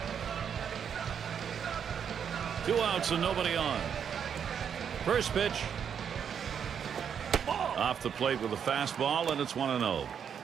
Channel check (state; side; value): quieter; left; 7.8 dB